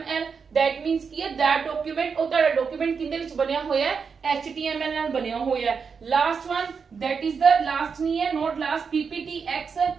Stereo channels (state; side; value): quieter; left; 5.8 dB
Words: दैट मींस की है दैट डॉक्यूमेंट, और ताड़ा डॉक्यूमेंट किंदे विच बनया होया है? एचटीएमएल नाल बनया होया है। Last one that is the last नहीं है, not last, PPTX,